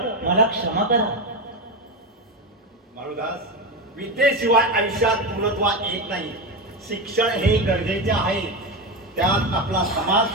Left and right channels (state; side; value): normal; both; correlation 0.16